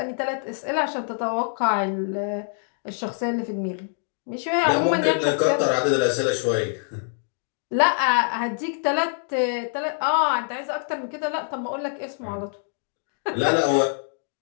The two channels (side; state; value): right; silent; digital silence